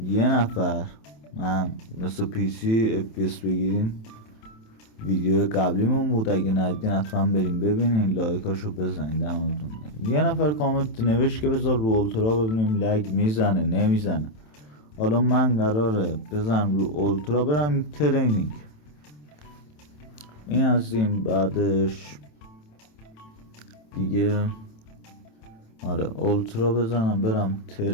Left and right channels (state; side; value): late; right; 27 ms